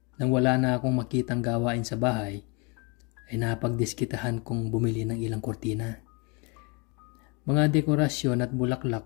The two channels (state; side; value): quieter; right; 31.1 dB